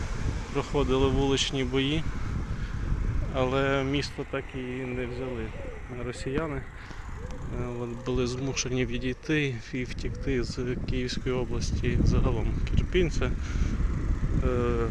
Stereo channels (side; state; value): both; identical; correlation 1.00